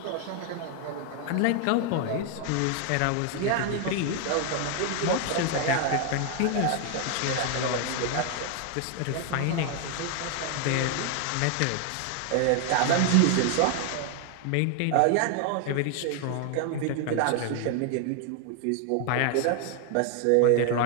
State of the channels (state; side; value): different; both; correlation 0.00